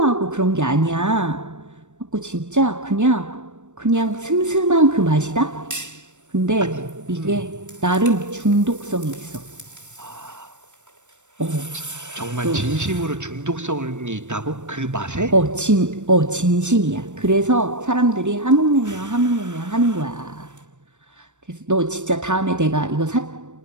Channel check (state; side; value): late; left; 0.84 ms